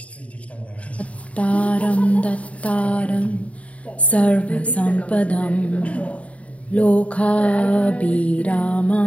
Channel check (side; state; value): right; late; 0.066 ms